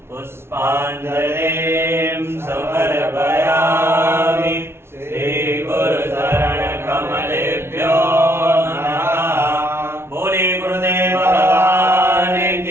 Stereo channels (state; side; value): late; left; 0.12 ms